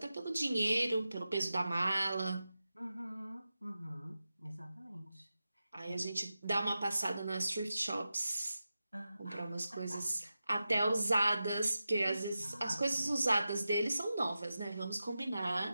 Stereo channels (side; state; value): both; inverted; correlation -0.92